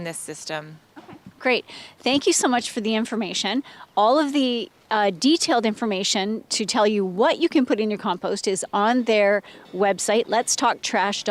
this system. Great. Thank you so much for the information. All of the detailed information to tell you what you can put in your compost is on their website,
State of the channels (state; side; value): identical; both; correlation 1.00